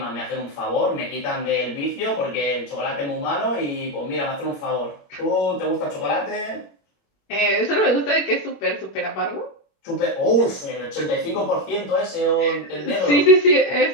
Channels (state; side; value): late; right; 21 ms